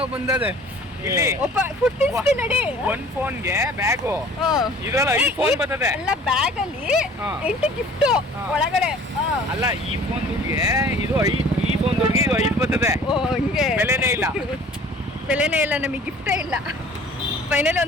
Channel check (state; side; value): normal; both; correlation 0.49